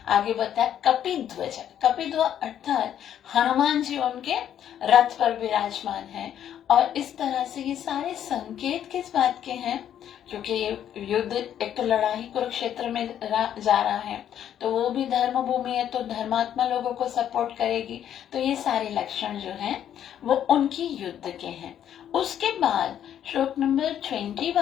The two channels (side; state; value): right; quieter; 10.1 dB